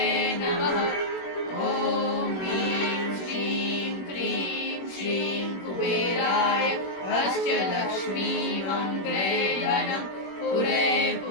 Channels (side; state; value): right; late; 21 ms